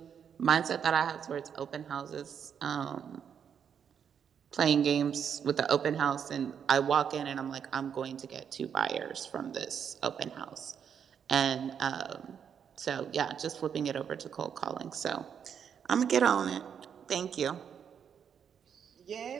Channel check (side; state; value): left; quieter; 7.8 dB